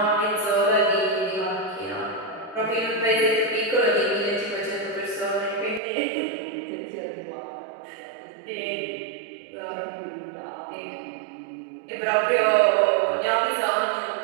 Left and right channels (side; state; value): left; drops out; at 5.8 s